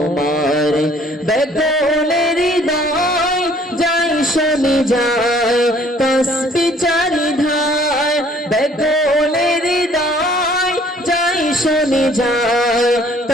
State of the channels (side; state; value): both; normal; correlation 0.58